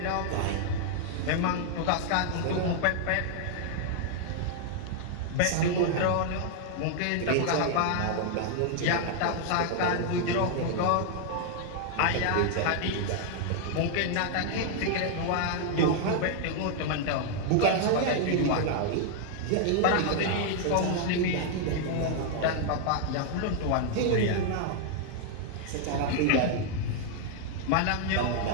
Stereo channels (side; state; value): both; different; correlation 0.00